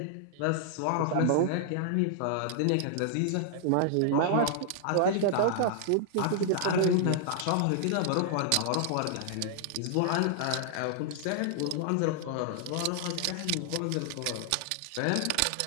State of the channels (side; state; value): both; different; correlation -0.01